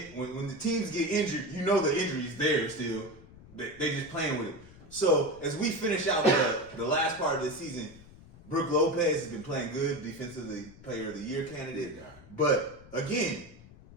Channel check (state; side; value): noise; left; rumble, 21 dB below the sound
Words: the teams get injured, you know the injury's there still. They just playing with it. So as we finish out the last part of the season, Brook Lopez has been playing good, defensively player of the year candidate. But again,